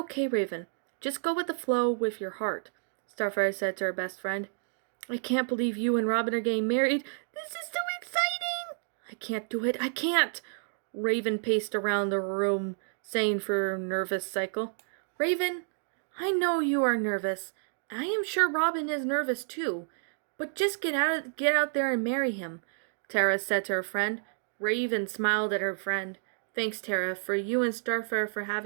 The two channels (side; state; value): left; silent; digital silence